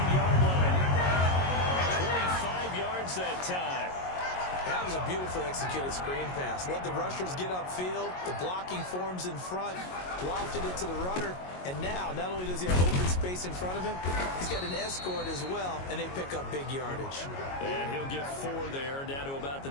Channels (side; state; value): right; late; 22 ms